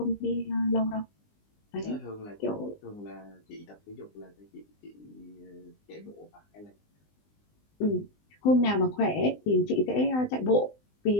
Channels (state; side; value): late; right; 20 ms